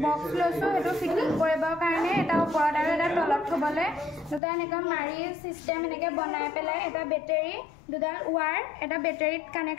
বক্স লৈছো এটো ফিটিং কৰিবৰ কাৰণে এটা ওপৰত আৰু এটা তলত থবলে দুটা এনেকা মাৰি সিস্টেম এনেকে বনাই পেলাই এটা বেটাৰী দুডাল ওৱাৰ এটা বেটাৰীত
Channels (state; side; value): drops out; right; at 4.4 s